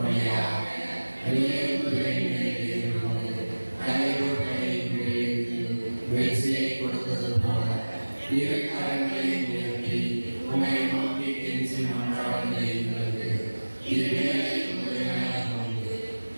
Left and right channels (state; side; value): inverted; both; correlation -1.00